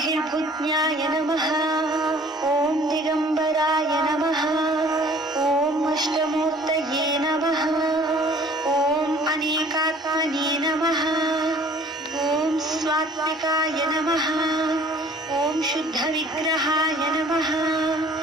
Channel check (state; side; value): normal; both; correlation 0.53